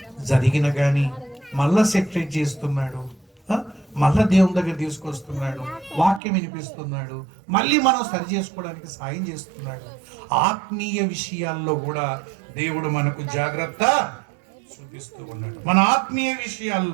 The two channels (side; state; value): left; drops out; at 6.2 s